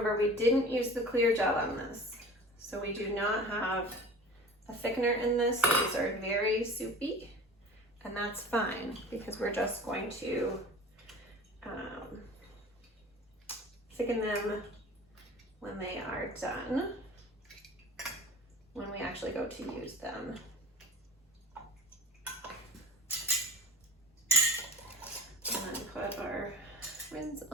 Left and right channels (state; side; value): normal; both; correlation 0.40